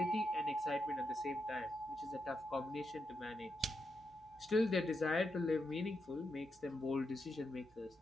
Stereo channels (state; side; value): normal; both; correlation 0.84